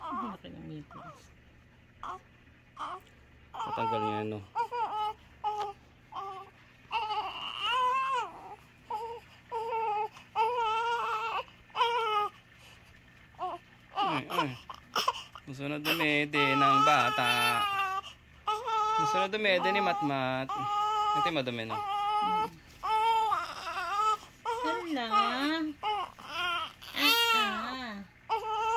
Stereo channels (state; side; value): identical; both; correlation 1.00